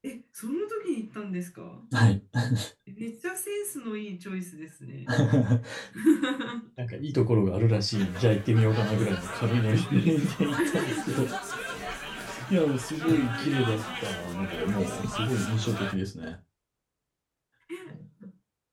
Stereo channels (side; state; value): both; identical; correlation 1.00